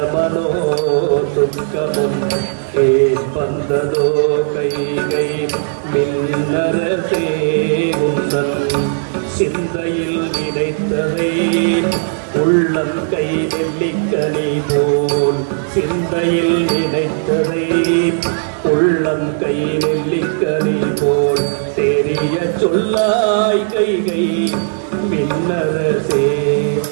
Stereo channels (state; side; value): silent; left; digital silence